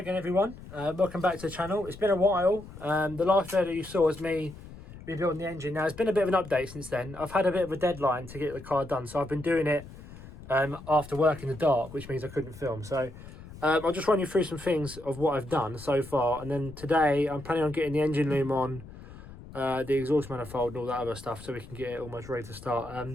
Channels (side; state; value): left; noise; rumble, 16 dB below the sound